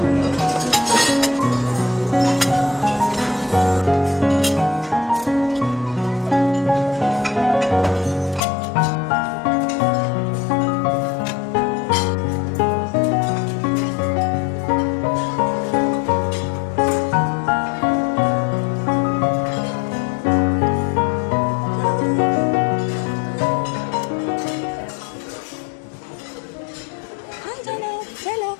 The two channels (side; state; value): right; drops out; at 8.4 s